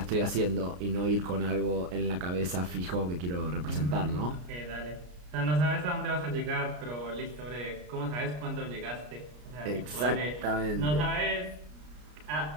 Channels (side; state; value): left; late; 33 ms